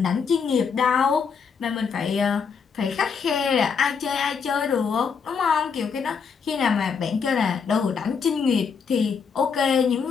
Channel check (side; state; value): right; quieter; 6.0 dB